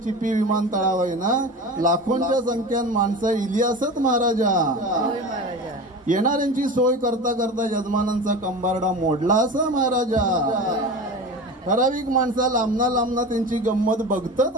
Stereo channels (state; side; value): normal; both; correlation 0.30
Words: चिपी विमानतळावर ना लाखोंच्या संख्येन माणसं इली असत महाराजा. येणाऱ्यांची सोय करता करता यजमानांचा कंबारडा मोडला असा महाराजा. ठराविक माणसा लांबना त्यांची गंमत बघतात